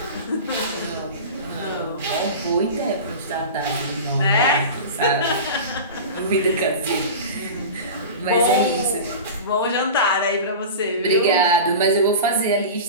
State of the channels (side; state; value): both; inverted; correlation -0.31